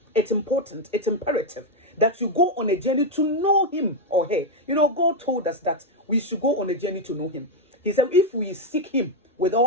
It's important, it's imperative that you go on a journey to know him or her. You know, God told us that we should go on a journey to know him. He said, if we seek him with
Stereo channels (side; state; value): both; normal; correlation 0.03